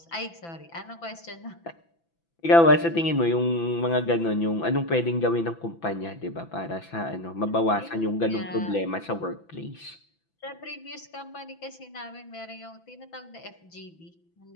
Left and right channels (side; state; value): right; late; 6.0 ms